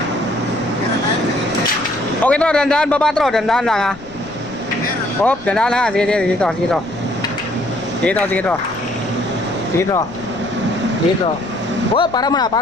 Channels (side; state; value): left; noise; rumble, 21 dB below the sound